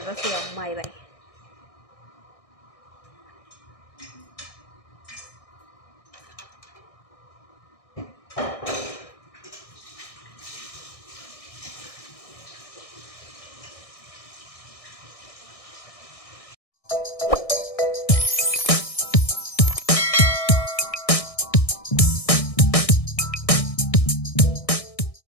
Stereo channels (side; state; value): right; late; 1.6 ms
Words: ያው ማይ ባይ